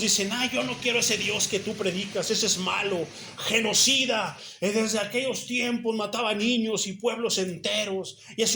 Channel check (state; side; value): identical; both; correlation 1.00